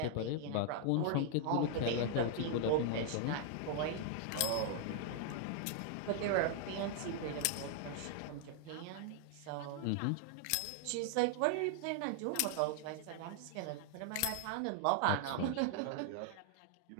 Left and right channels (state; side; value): different; both; correlation 0.00